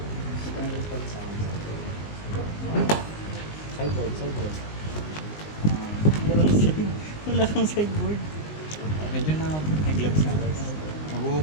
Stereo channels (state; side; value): late; right; 19 ms